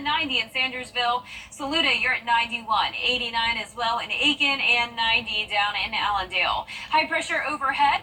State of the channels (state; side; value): identical; both; correlation 1.00